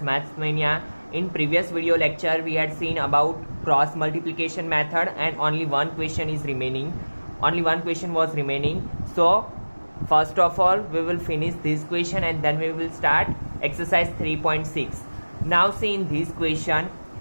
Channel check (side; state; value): both; inverted; correlation -1.00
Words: Maths Mania. In previous video lecture we had seen about cross multiplication method and only one question is remaining. Only one question was remaining. So first of all we will finish this question and then we will start exercise 3.6. Now see in this question,